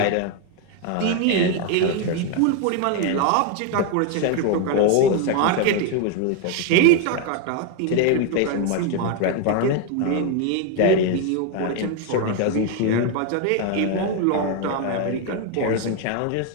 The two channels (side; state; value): both; different; correlation 0.01